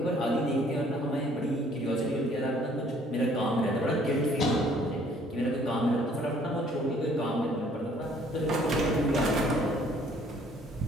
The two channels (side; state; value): both; normal; correlation 0.60